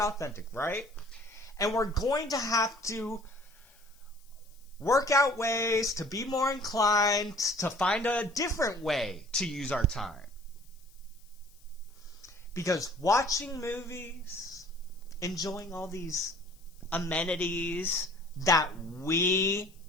right? And we're going to have to work out ways to be more inclined to find a different way to use our time. Because watching movies, enjoying all these amenities that we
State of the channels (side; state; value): left; noise; hiss, 28 dB below the sound